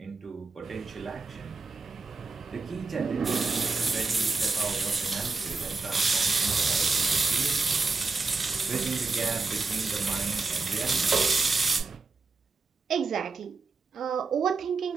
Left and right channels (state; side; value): quieter; left; 4.1 dB